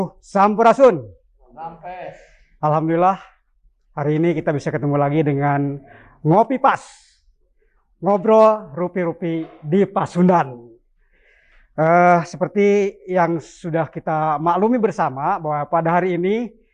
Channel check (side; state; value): both; identical; correlation 1.00